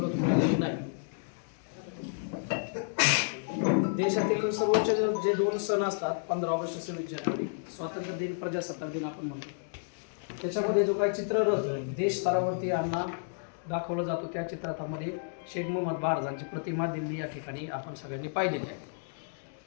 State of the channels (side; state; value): right; silent; digital silence